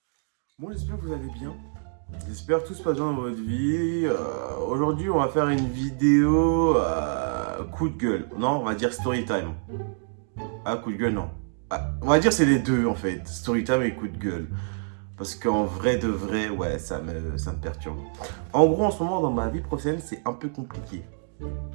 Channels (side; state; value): left; silent; digital silence